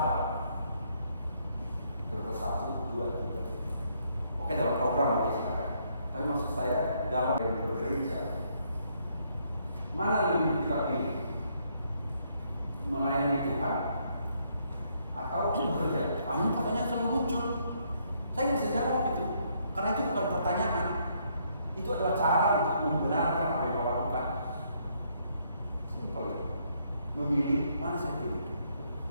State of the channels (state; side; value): inverted; both; correlation -0.71